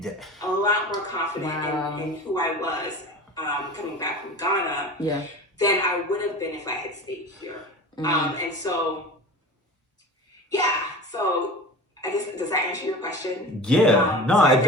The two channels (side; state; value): both; normal; correlation 0.35